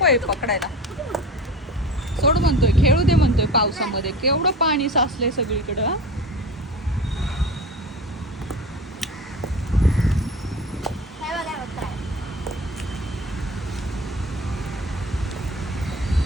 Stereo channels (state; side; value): normal; both; correlation 0.34